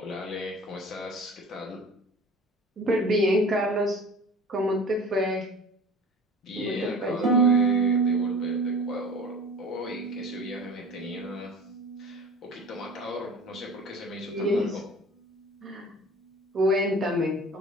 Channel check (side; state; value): both; normal; correlation 0.41